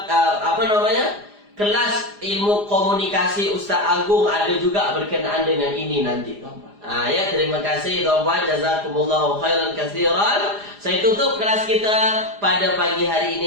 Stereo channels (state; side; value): late; left; 4.9 ms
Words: kelas ilmu komunikasi Ustaz Agung ada juga berkenaan dengan ini nanti, tuan-puan. Ya, terima kasih tuan-puan, jazakumullahu khairan katsiran. Saya tutup kelas kita pada pagi hari